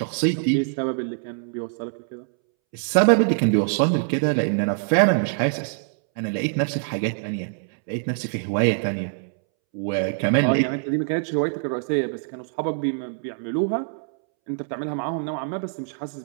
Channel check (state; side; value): silent; left; 63 dB below the other